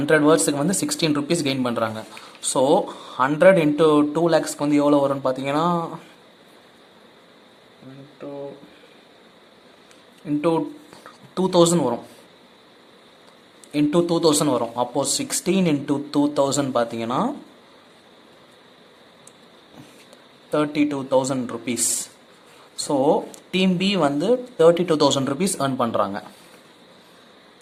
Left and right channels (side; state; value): both; identical; correlation 1.00